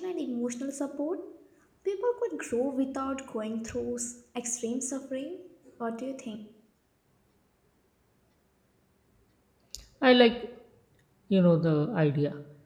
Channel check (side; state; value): both; identical; correlation 1.00